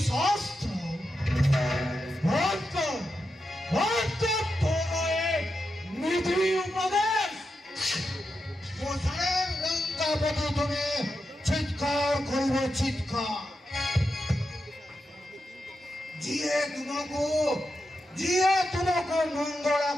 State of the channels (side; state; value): both; normal; correlation 0.88